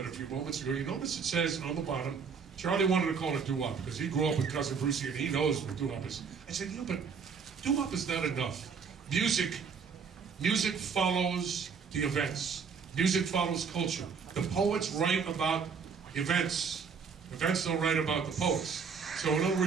a few moments ago, you notice it says on the bottom, Charlie wanted to call it doo-wop because he grew up with Cousin Brucie and he knows what doo-wop is. I said, yeah, but doo-wop is not enough. Music follows the events. Music follows culture. The poets write about events. Events don't write about the poets. So in other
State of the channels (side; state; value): left; quieter; 5.9 dB